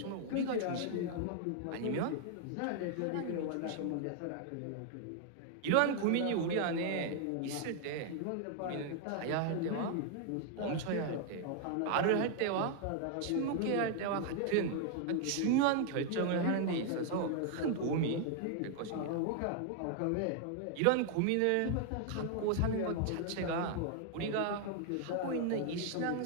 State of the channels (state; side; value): different; both; correlation 0.00